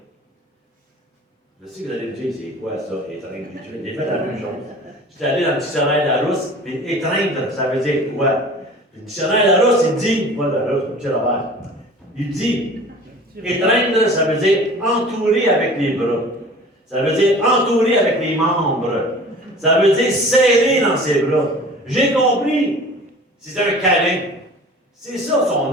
Je sais que vous allez me dire, c'est quoi ça, étreindre? J'ai fait la même chose. J'étais allé dans le dictionnaire Larousse, puis étreindre, ça veut dire quoi? Le dictionnaire Larousse, il dit, moi, Larousse, petit Robert, il dit, étreindre, ça veut dire entourer avec les bras. Ça veut dire entourer avec les membres. Ça veut dire serrer dans ses bras. J'ai compris. C'est un câlin. C'est ça son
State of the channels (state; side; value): normal; both; correlation 0.43